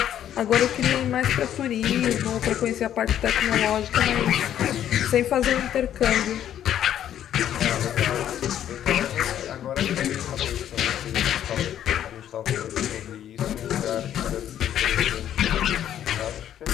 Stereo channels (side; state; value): right; quieter; 10.7 dB